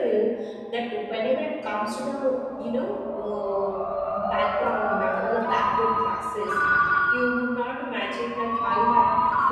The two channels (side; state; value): both; identical; correlation 1.00